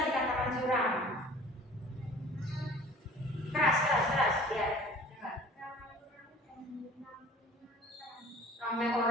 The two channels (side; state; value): both; normal; correlation 0.47